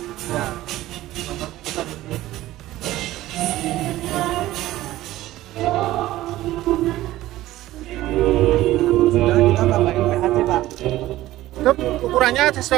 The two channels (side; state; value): left; quieter; 15.7 dB